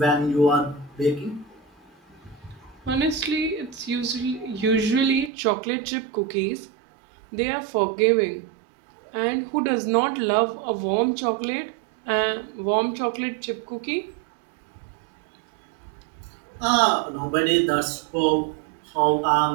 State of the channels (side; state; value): left; drops out; at 5.3 s